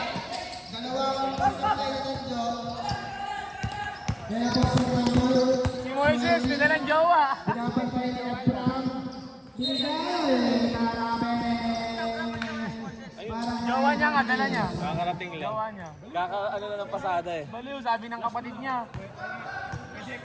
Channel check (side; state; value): both; identical; correlation 1.00